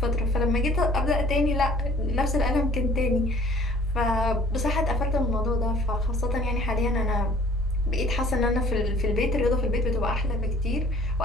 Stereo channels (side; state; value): both; normal; correlation 0.53